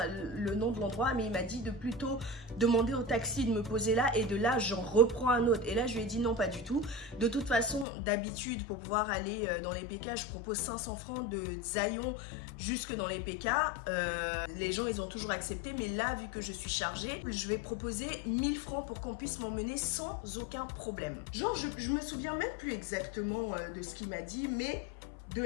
le nom de l'endroit, mais il m'a dit de plutôt demander au taxi de me poser là et de là, j'en reprends un autre. Et là, je lui ai dit non, pas du tout. De toute façon, d'habitude, pour pouvoir aller dans les PK, je propose 500 francs de Zayon jusque dans les PK. Les gens, ils ont toujours accepté, mais là, vu que je suis chargée, je vais proposer 1000 francs pour qu'on puisse m'emmener sans aucun problème. Genre, je me souviens même plus exactement de ce qu'il m'a dit, mais... de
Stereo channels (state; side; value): drops out; right; at 7.9 s